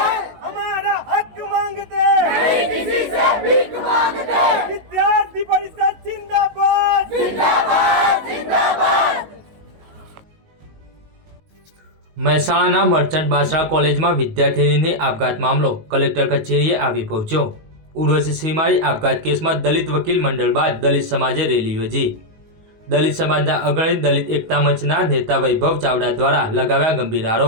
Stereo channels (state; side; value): late; left; 19 ms